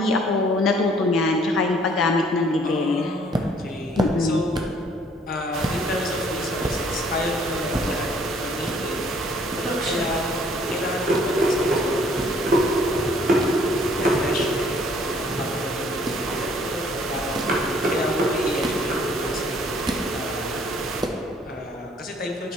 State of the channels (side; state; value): both; normal; correlation 0.60